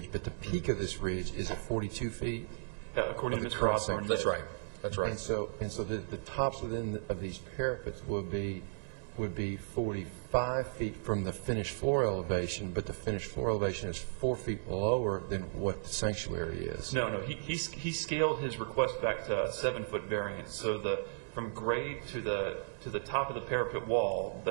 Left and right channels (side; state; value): left; silent; digital silence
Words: but the peak of this ridge is at 42 feet? According to Of the Mr. current Osborne, That's right. That's right. And so the tops of these parapets would be 45 feet from the finished floor elevation, but the finished floor elevation is 4 feet lower than what the sanctuary is. No. He scaled his request back to a 7-foot variance. So from grade to the top of the parapet wall,